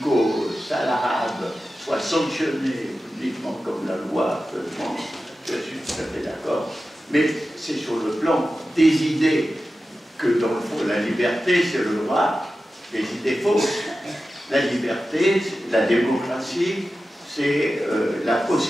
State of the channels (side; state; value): both; normal; correlation 0.93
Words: sale Arabe soit sanctionnée publiquement comme la loi. Je suis tout à fait d'accord. Mais c'est sur le plan des idées que, dans le fond, la liberté, c'est le droit des idées fausses. La liberté, la démocratie, c'est la